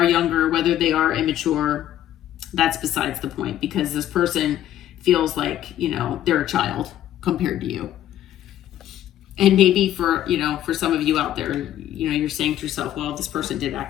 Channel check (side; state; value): right; quieter; 12.2 dB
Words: younger, whether they are immature, that's besides the point, because this person feels like, you know, they're a child compared to you. And maybe for, you know, for some of you out there, you know, you're saying to yourself, well, this person did